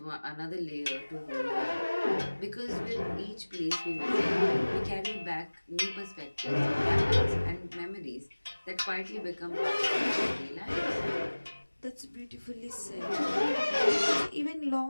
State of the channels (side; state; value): both; inverted; correlation -1.00